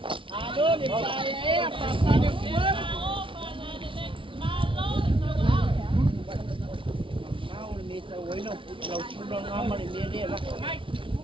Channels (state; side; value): late; left; 0.25 ms